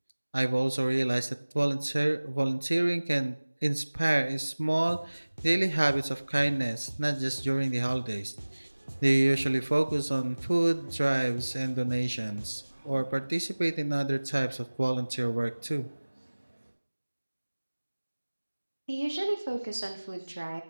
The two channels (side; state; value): both; inverted; correlation -1.00